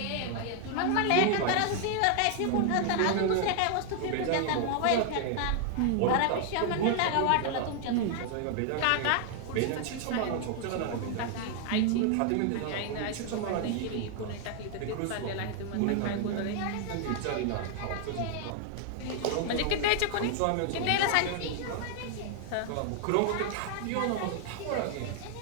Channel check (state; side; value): different; both; correlation 0.00